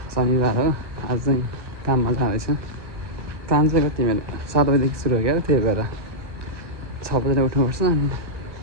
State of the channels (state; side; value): late; left; 1.2 ms